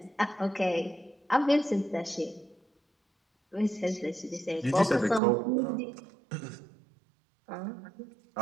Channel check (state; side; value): drops out; left; at 5.2 s